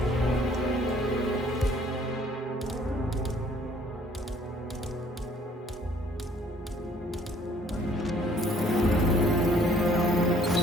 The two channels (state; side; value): normal; both; correlation 0.60